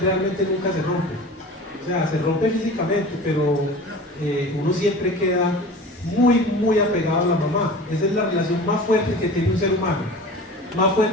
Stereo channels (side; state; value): both; normal; correlation 0.38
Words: nunca se rompe. O sea, se rompe físicamente, pero uno siempre queda muy apegado a la mamá. Esa es la relación más fuerte que tiene un ser humano. Más